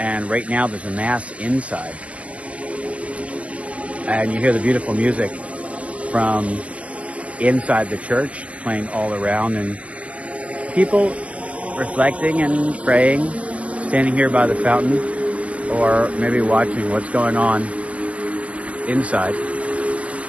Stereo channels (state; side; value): late; left; 0.064 ms